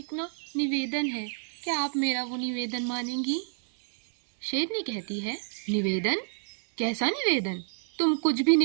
निवेदन है। क्या आप मेरा वो निवेदन मानेंगी? शेरनी कहती है, निवेदन? कैसा निवेदन? तुम कुछ भी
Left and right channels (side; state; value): left; silent; digital silence